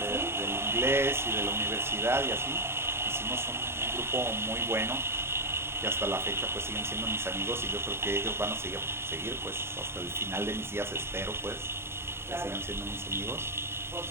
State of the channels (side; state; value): left; late; 0.12 ms